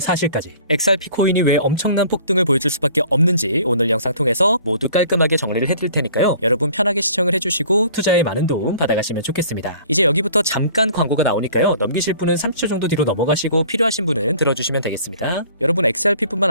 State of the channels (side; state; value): both; inverted; correlation -0.51